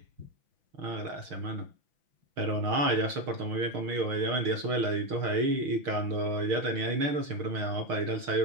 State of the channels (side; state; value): left; late; 6.5 ms